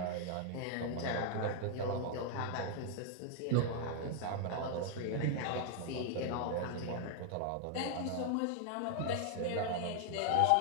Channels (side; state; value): both; different; correlation 0.00